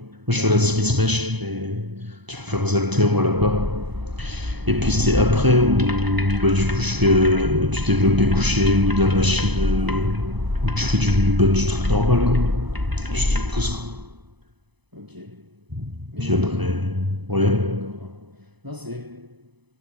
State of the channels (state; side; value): late; left; 0.99 ms